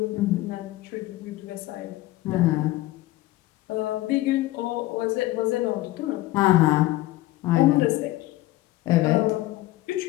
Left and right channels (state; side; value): quieter; right; 17.3 dB